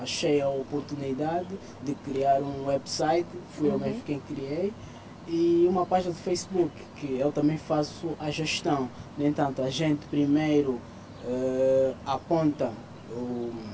achei a oportunidade de criar um website, fui eu mesmo quem criei, e uma página do Facebook, que eu também faço a gestão. No entanto, a gente primeiro aponta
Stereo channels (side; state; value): both; identical; correlation 1.00